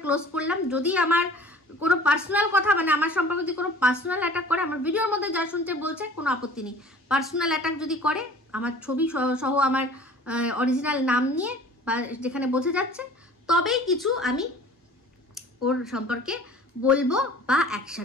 ক্লোজ করলাম। যদি আমার কোনো পার্সোনাল কথা মানে আমার সম্পর্কে যদি কোনো পার্সোনাল অ্যাটাক করে, আমার ভিডিওর মধ্যে যা শুনতে বলছে কোনো আপত্তি নেই। পার্সোনাল অ্যাটাক যদি করে আমার ছবি সহ আমার অরিজিনাল নাম নিয়ে বা যেখানে বোঝা যাচ্ছে, তবেই কিছু আমি ওর সম্পর্কে বলবো বা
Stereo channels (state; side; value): normal; both; correlation 0.47